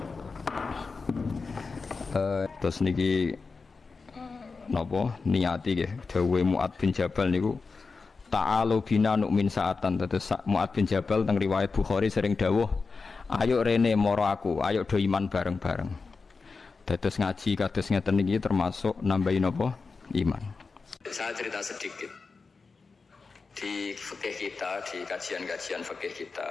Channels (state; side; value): quieter; right; 4.5 dB